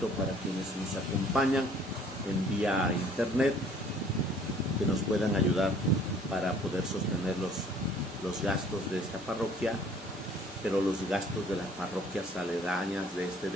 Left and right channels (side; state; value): both; normal; correlation 0.56